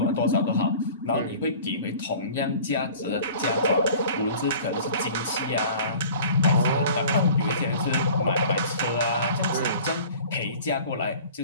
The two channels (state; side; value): inverted; both; correlation -0.45